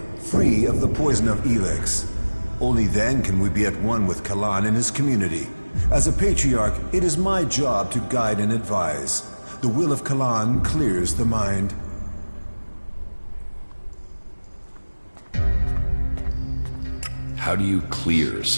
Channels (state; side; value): inverted; both; correlation -1.00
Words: free of the poison of Elex. Only then can we be at one with Kalan and his community. As a patriarch, it is my job to guide and advise. The will of Kalan clears the mind. How do you clear